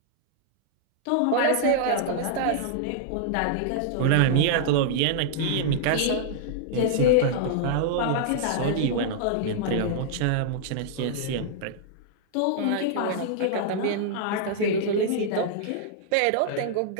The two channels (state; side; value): different; both; correlation -0.01